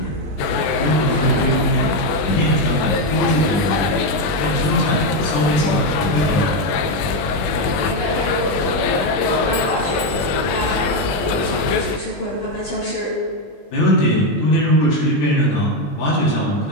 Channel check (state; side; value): late; right; 21 ms